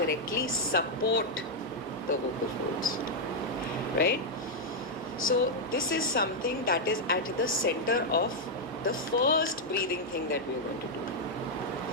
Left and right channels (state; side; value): normal; both; correlation -0.02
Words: support the vocal folds, right? So this is something that is at the center of the first breathing thing that we are going to do.